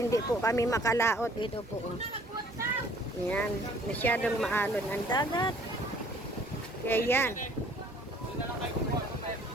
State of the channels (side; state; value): both; normal; correlation 0.57